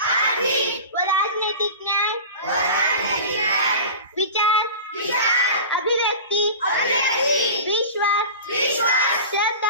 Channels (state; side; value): inverted; both; correlation -0.34